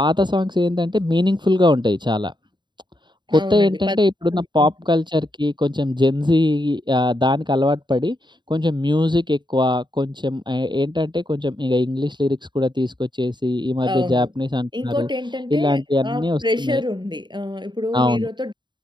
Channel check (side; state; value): left; late; 0.22 ms